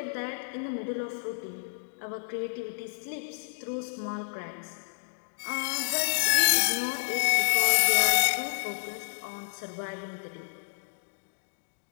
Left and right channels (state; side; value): silent; right; digital silence